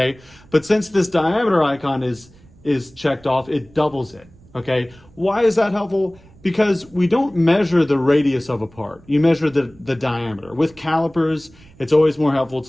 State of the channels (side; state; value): right; noise; rumble, 26 dB below the sound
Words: But since this diameter icon is checked off, it doubles it, okay? Why is that helpful? Because we don't measure the radius of a part. You measure the diameter. With calipers, it's always more helpful